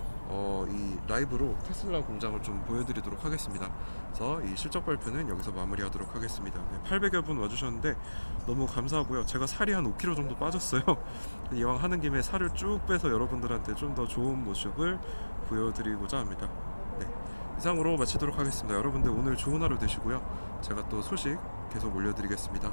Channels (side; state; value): both; inverted; correlation -1.00